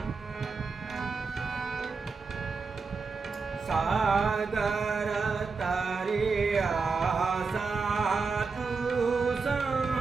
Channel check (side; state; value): left; quieter; 4.6 dB